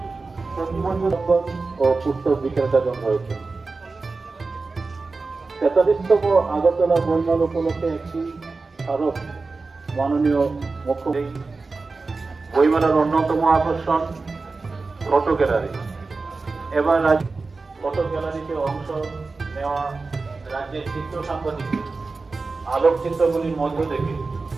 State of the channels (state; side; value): quieter; left; 3.9 dB